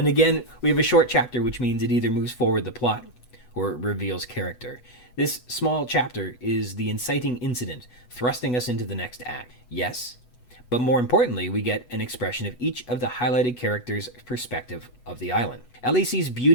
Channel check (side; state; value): right; late; 8.2 ms